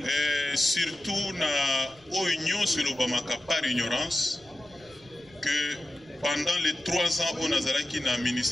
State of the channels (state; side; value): noise; left; rumble, 29 dB below the sound